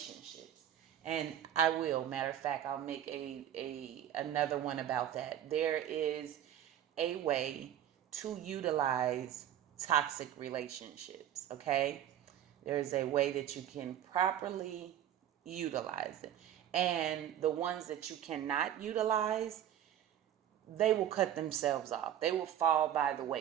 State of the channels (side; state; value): left; quieter; 10.8 dB